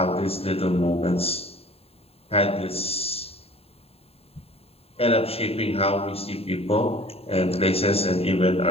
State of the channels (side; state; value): right; late; 0.29 ms